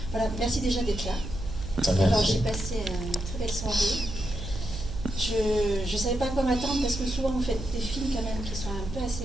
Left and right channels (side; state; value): right; noise; hum, 8 dB below the sound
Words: Voilà, merci déjà d'être là. Alors, j'ai passé une très belle soirée. Je ne savais pas à quoi m'attendre parce que souvent vous faites des films quand même qui sont un peu